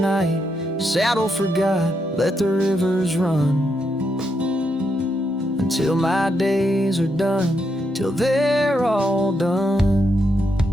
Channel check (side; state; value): both; normal; correlation 0.80